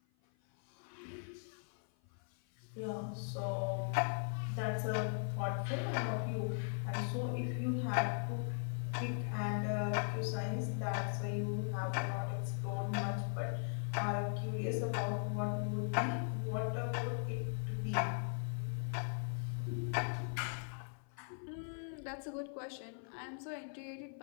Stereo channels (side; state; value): right; silent; 52 dB below the other